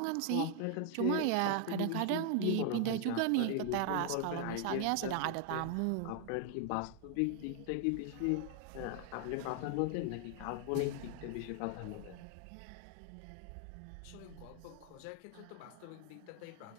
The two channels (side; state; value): both; different; correlation 0.00